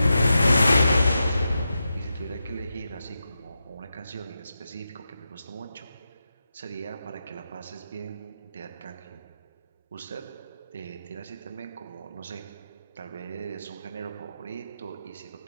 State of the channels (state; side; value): inverted; both; correlation -0.88